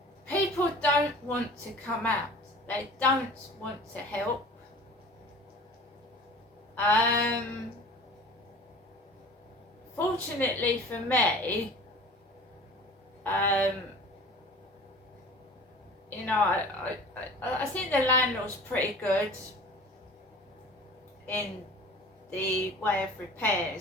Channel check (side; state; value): both; normal; correlation 0.42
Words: people don't want to come out. They don't want to help. Fortunately for me, you know, I think the landlord's pretty good in the way of